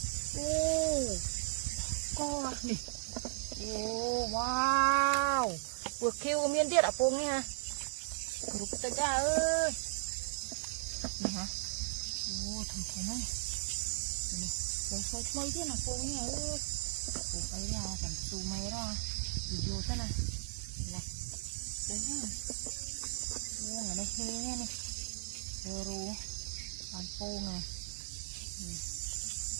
con này wow vừa kêu miên tiết ở bông nha rụt ta ra ơi này hả thằng thế này rồi xoay mấy tiết là bông nha ơi bông ấy là chẳng su mê ra đi vô sát này này đấy nhá ở đây he này rồi ăn phô này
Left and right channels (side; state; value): left; silent; digital silence